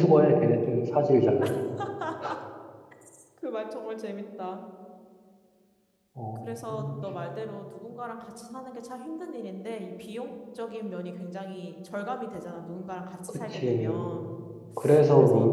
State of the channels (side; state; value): both; identical; correlation 1.00